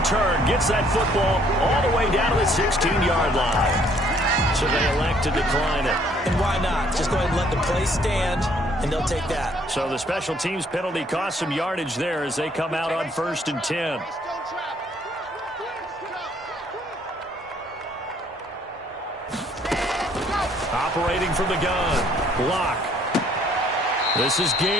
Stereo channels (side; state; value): both; normal; correlation 0.63